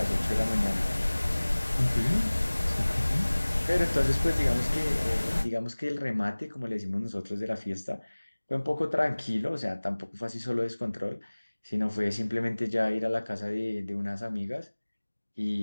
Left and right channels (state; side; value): inverted; both; correlation -1.00